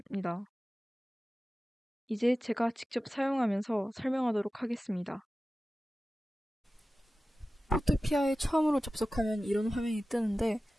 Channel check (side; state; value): both; normal; correlation 0.95